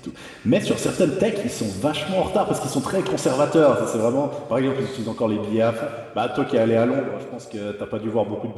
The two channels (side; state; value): both; identical; correlation 1.00